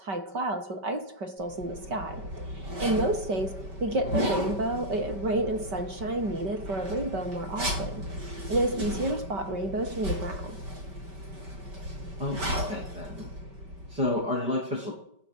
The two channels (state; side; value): late; left; 5.2 ms